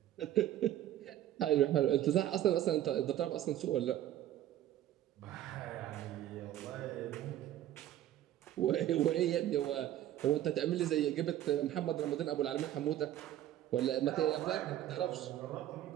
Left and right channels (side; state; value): left; quieter; 12.5 dB